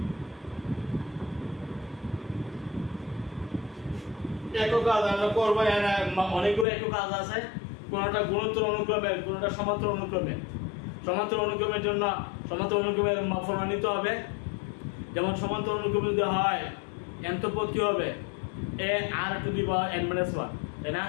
একক কাজ আমরা করব। অনেকগুলো একক কাজ আছে, কোনটা গুণোত্তর অনুক্রমে, কোনটা সমান্তরাল অনুক্রমে। সমান্তরাল অনুক্রমের জন্য সমান্তরাল অনুক্রমের ফর্মুলা নিতে হবে। যেমন সমান্তরাল অনুক্রম যদি হয় nth পদ কি হবে a r to the power n - 1, তাই না?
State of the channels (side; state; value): right; drops out; at 6.7 s